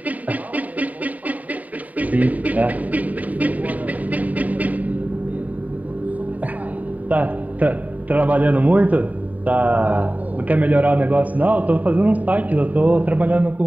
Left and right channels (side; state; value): left; late; 0.073 ms